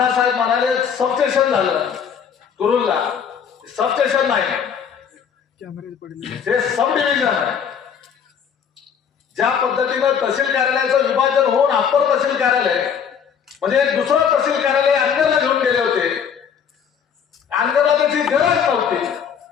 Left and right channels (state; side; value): quieter; right; 7.4 dB